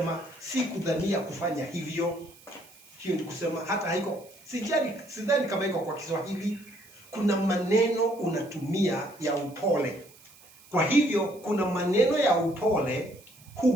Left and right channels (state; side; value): noise; right; hiss, 24 dB below the sound